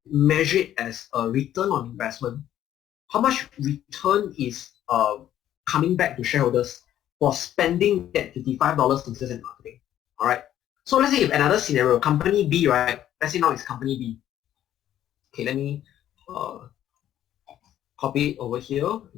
measure it as a return on investment. How much return is coming back to shareholders for spending that $55 in sales and marketing? All right. So let's say if another scenario, company B, right? Let's say now it's company B. Okay, let me copy it over here,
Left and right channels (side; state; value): right; quieter; 11.7 dB